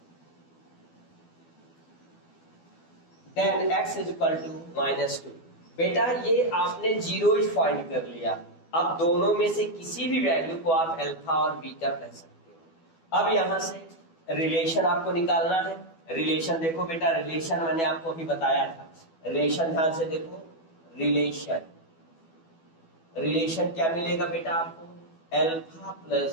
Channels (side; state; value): right; late; 12 ms